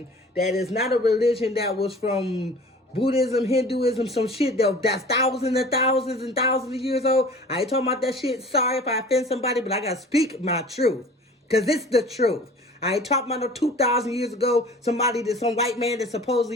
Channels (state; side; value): normal; both; correlation 0.44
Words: that is not a religion that was from Buddhism, Hinduism, some shit that's thousands and thousands and thousands of years old. I ain't talking about that shit. Sorry if I offend somebody, but I gotta speak my truth. Because it's the truth. I ain't talking about no 2,000 years ago, some white man that